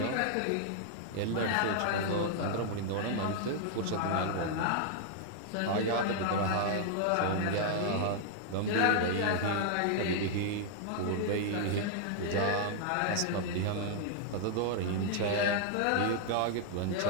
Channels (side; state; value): both; different; correlation 0.00